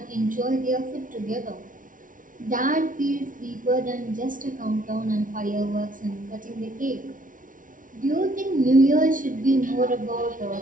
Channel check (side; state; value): left; late; 0.38 ms